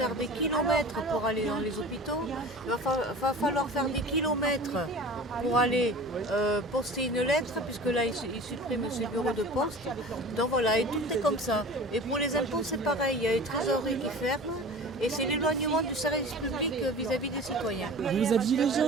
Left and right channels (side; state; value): both; normal; correlation 0.39